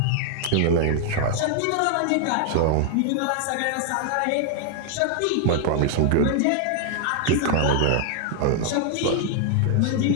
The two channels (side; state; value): both; different; correlation 0.00